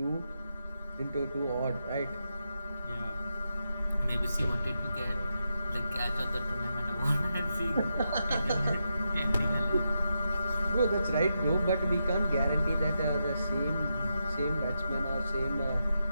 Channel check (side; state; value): both; inverted; correlation -0.86